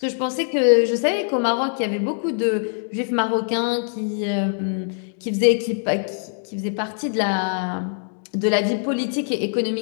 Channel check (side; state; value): right; silent; digital silence